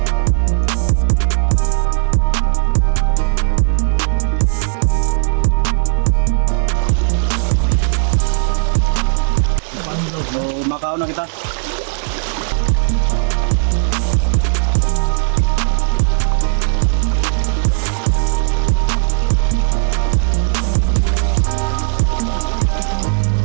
So, Macau na kita.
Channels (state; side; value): silent; left; 69 dB below the other